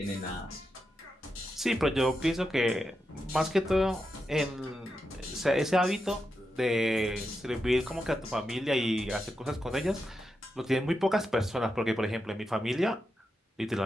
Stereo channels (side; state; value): both; normal; correlation 0.87